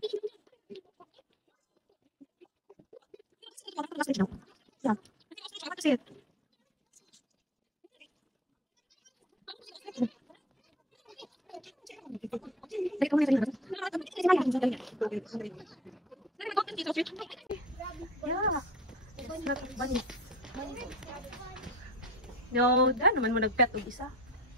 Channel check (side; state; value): both; normal; correlation 0.40